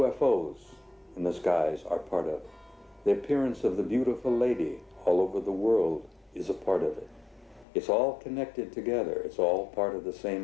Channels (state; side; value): drops out; right; at 7.7 s